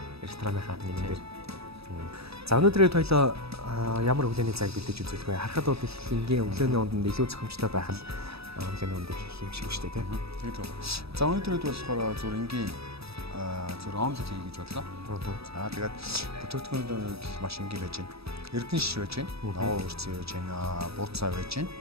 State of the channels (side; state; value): left; late; 0.78 ms